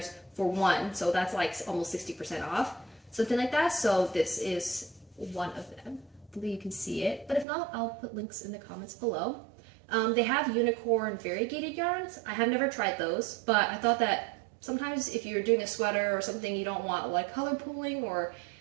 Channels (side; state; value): left; drops out; at 7.5 s